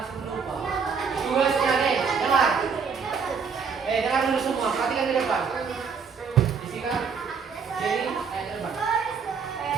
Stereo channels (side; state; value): left; quieter; 5.8 dB